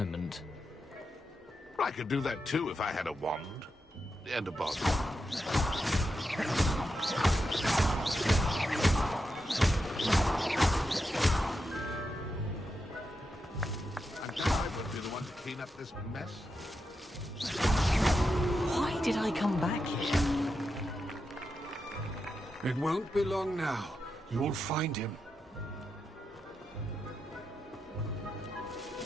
I could do that too if I had a wand. And a bottle. I'm glad I would be the one to clean up this mess. Why did I come back here? It won't be long now. You'll find him.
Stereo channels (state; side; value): normal; both; correlation 0.87